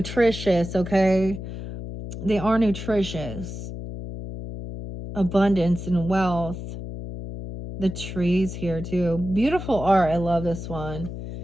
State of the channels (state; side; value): noise; left; hum, 8 dB below the sound